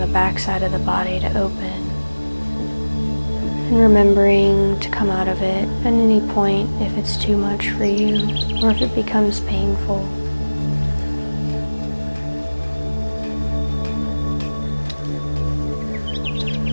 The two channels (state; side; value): inverted; both; correlation -1.00